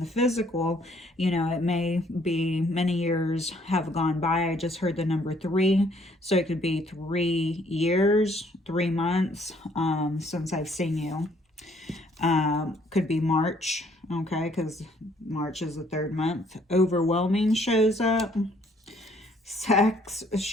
physical, you know, it may be many years have gone by. I just heard the number 3. So it could be 3 years, 3 months since I've seen you. Could be March, okay, because March is the 3rd month. Overwhelming shows up. Sex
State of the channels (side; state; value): both; normal; correlation 0.64